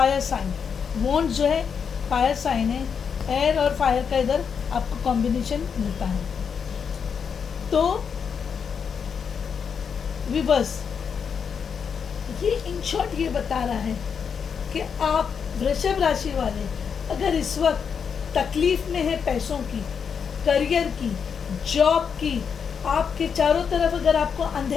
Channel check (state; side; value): quieter; right; 6.7 dB